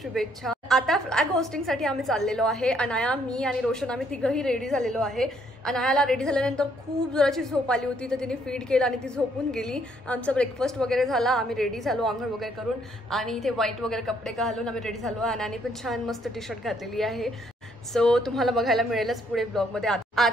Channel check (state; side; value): normal; both; correlation 0.68